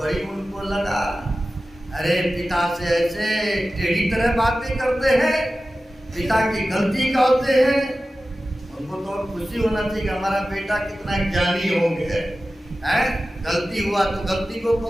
उनको लगा, अरे पिता से ऐसे टेढ़ी तरह बातें करते हैं, पिता की गलती कहते हैं। उनको तो खुशी होना चाहिए कि हमारा बेटा कितना ज्ञानी हो गया है, गलती हुआ तो गलती को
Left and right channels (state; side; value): normal; both; correlation 0.95